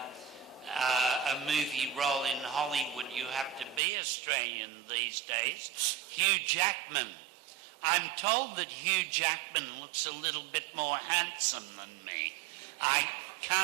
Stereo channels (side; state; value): left; drops out; at 3.8 s